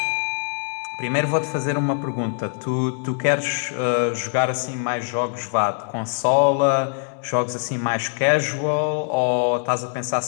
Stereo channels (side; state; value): right; silent; 64 dB below the other